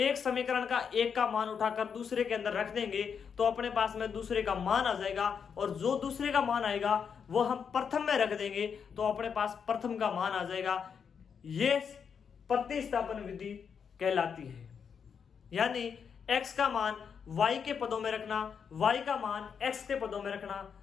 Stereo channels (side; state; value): right; quieter; 6.8 dB